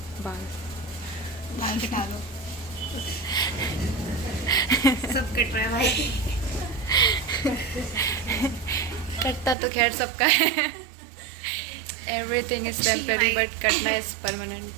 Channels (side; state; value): left; drops out; at 9.6 s